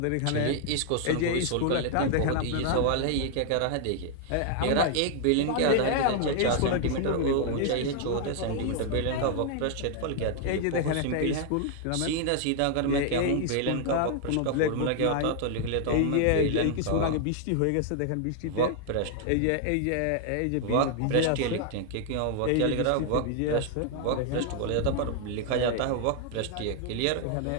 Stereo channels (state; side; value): different; both; correlation 0.00